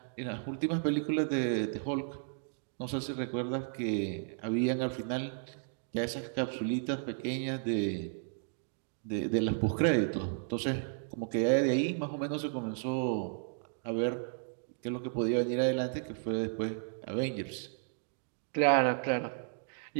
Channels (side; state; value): left; silent; digital silence